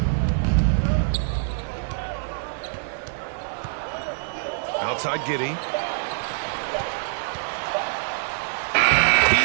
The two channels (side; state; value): left; silent; digital silence